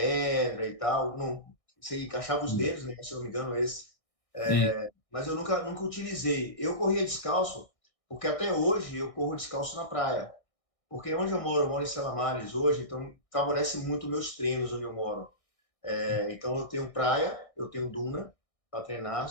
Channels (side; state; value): right; late; 1.6 ms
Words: e tal. Não, você encaixava os dedos, né? Se eu não me engano, esse. E- Mas eu nunca utilizei. Eu corria descalço, porque até hoje eu corro descalço na praia. Porque onde eu moro em Selamares hoje, então favorece muito meus treinos onde eu moro. Então eu tenho praia, eu tenho duna, para treinar,